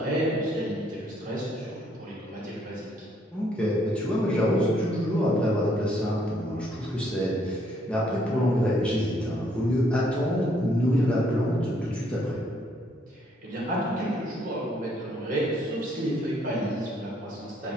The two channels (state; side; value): normal; both; correlation 0.68